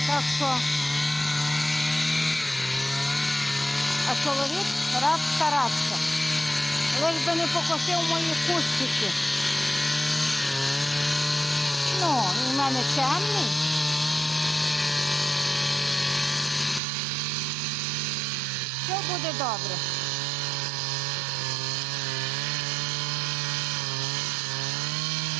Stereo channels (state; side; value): drops out; left; at 16.8 s